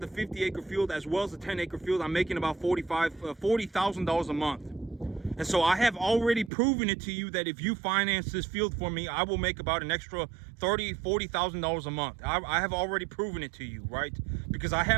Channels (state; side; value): drops out; left; at 6.5 s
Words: field, as well as the 10-acre field, I'm making about $40,000 a month. And so I have already proven it to you that if you finance this field for me, I will make about an extra $40,000 a month. I have already proven it to you, right? Because I